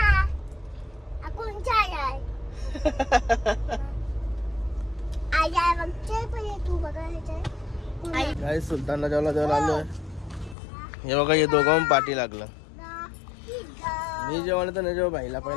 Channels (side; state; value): right; drops out; at 10.6 s